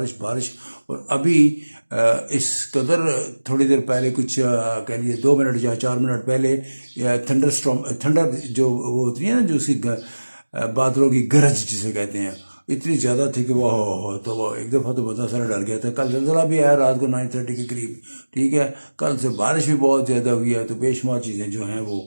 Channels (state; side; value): inverted; both; correlation -1.00